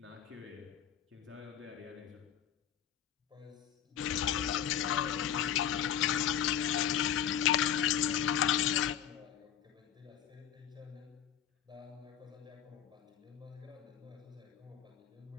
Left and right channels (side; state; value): right; quieter; 9.6 dB